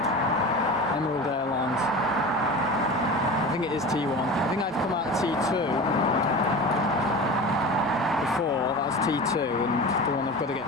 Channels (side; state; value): both; normal; correlation 0.32